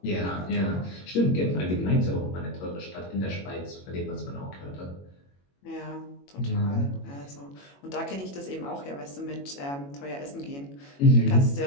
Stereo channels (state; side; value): late; right; 21 ms